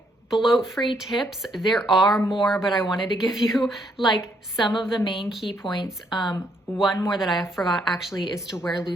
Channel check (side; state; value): both; normal; correlation 0.72